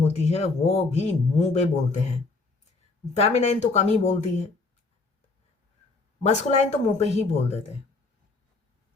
है वो भी मुंह पे बोलते हैं, फेमिनाइन तो कम ही बोलती है, मस्कुलाइन तो मुंह पे ही बोल देते हैं,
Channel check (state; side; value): quieter; right; 3.7 dB